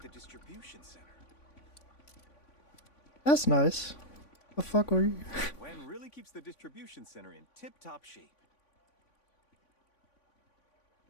the distribution center. That's nice. The fuck were you? Gwen really keeps the distribution center in tip-top shape.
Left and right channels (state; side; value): late; right; 3.5 ms